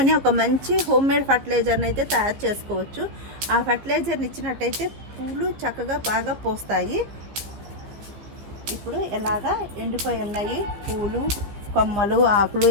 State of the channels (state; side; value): late; left; 15 ms